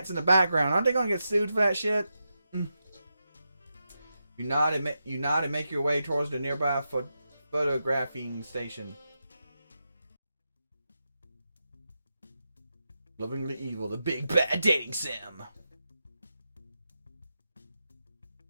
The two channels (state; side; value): inverted; both; correlation -0.88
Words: in the background? Aren't they gonna get sued for that shit? You nod and make your way towards the nearby photographing station. Lovingly Evil, the big bad dating sim.